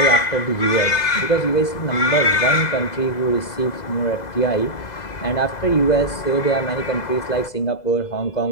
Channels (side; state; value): right; late; 2.0 ms